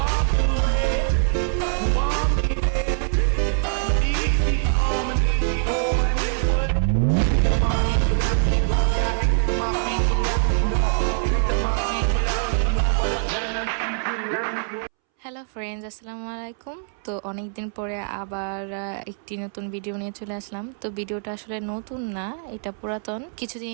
away, you want me there. Easy on and easy on and it would. Come on, you should have me go back. My feet so that we know. My feet without me know what I'm gonna do. Hello friends, আসসালামু আলাইকুম। তো অনেক দিন পরে আবার একটি নতুন video নিয়ে চলে আসলাম। তো ভিডিওটা আসলে নতুন না, এটা পুরাতন।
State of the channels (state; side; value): silent; left; 63 dB below the other